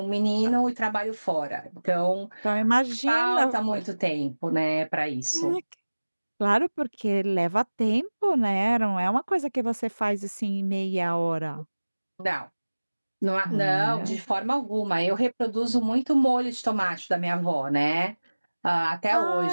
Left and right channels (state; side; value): inverted; both; correlation -1.00